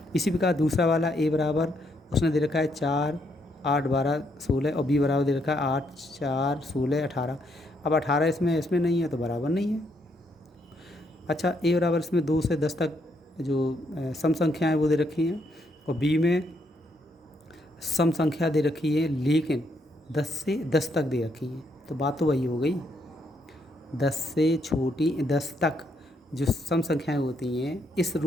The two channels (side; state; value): both; normal; correlation 0.74